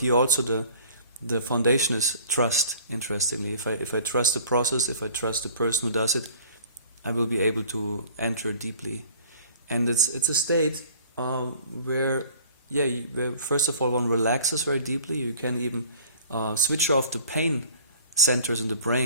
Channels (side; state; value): both; inverted; correlation -0.51